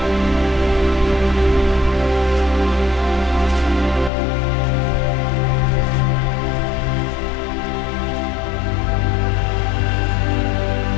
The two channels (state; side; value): drops out; right; at 4.1 s